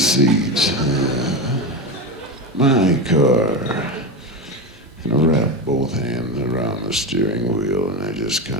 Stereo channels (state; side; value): normal; both; correlation 0.18